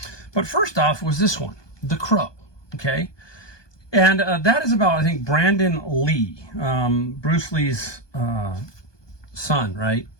But first off was this one, The Crow. Okay. And that is about, I think, Brandon Lee, Bruce Lee's son, right?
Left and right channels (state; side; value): late; right; 1.2 ms